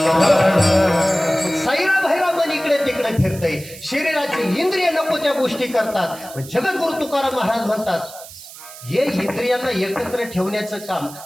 साईरा भैरा मन इकडे तिकडे फिरतय, शरीराची इंद्रिय नको त्या गोष्टी करतात. जगद्गुरु तुकाराम महाराज म्हणतात, हे इंद्रियांना एकत्र ठेवण्याचं काम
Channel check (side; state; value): right; noise; hiss, 16 dB below the sound